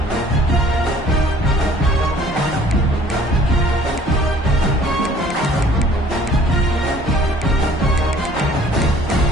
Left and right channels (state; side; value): normal; both; correlation 0.55